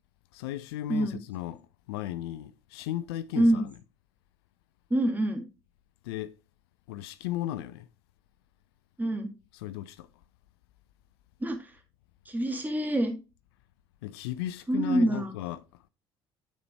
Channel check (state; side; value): normal; both; correlation 0.75